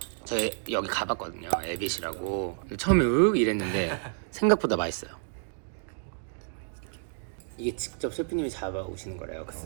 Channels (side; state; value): left; silent; digital silence